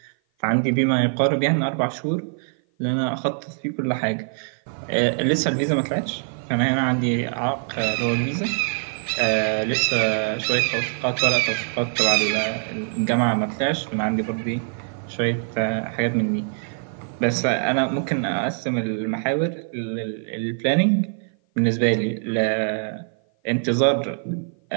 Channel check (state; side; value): silent; left; 55 dB below the other